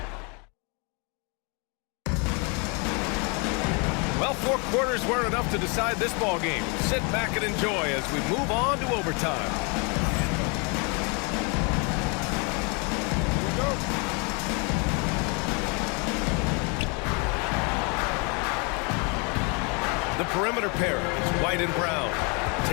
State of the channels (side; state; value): right; quieter; 33.0 dB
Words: Well, 4 quarters weren't enough to decide this ball game. Sit back and enjoy as we move on to overtime. The perimeter pair is White and Brown.